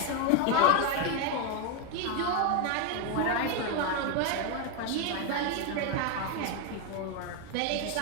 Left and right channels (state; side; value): different; both; correlation 0.01